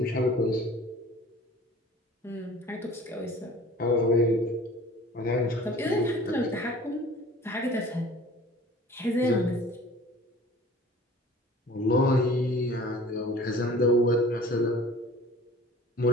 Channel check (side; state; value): both; normal; correlation 0.46